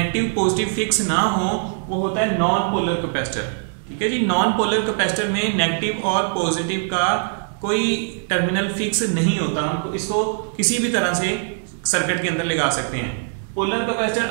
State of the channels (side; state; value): left; silent; digital silence